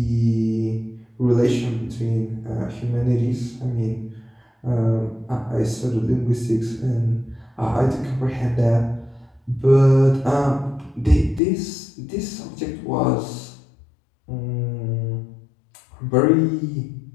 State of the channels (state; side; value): drops out; right; at 11.4 s